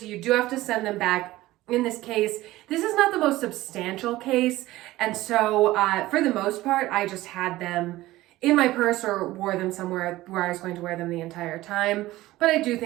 you do have to send them back. In this case, this is not the most substantial case. And so for the most part, I just had them in my purse or wore them somewhere where I was going to wear them the entire time. But I do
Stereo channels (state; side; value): quieter; left; 17.1 dB